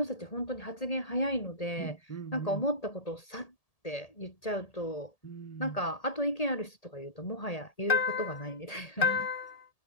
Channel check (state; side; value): late; right; 1.8 ms